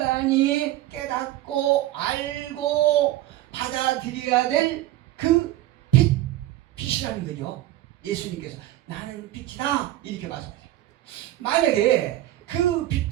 깨닫고 알고 받아들여야 될 그 빛이라는 거죠. 예수님께서 나는 빛이다 이렇게 말씀하세요. 만약에 그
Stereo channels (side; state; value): left; quieter; 15.0 dB